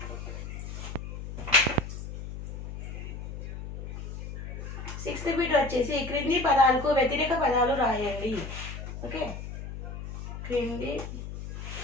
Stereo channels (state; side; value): noise; left; hum, 8 dB below the sound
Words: sixth bit వచ్చేసి క్రింది పదాలకు వ్యతిరేక పదాలు రాయండి. ఓకే, క్రింది